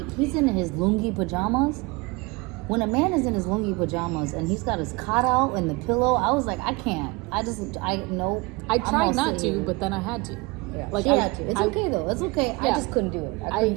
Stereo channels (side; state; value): left; quieter; 25.8 dB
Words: He's in his lungi pajamas. When a man is in his lungi pajamas and he's got his cot out and the pillow, I was like, I can't. I tried I tried not to, but then I had to. Yeah, Like she had to. It's okay though. It's okay. I Yeah. just couldn't do it. I couldn't